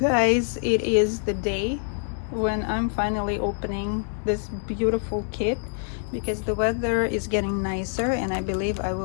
it is the day when I'm finally opening this beautiful kit, because the weather is getting nicer and I believe I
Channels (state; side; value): silent; right; digital silence